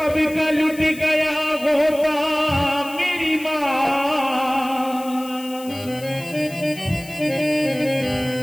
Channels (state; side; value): noise; left; hiss, 18 dB below the sound